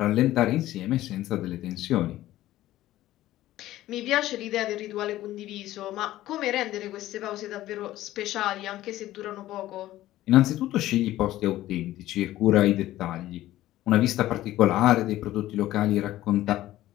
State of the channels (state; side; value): quieter; right; 14.9 dB